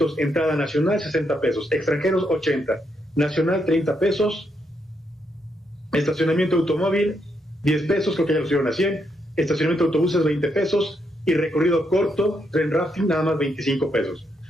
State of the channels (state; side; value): normal; both; correlation 0.78